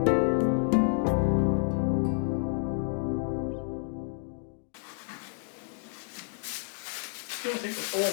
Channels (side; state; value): right; silent; digital silence